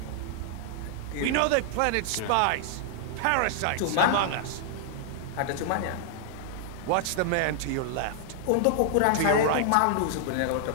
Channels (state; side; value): different; both; correlation -0.01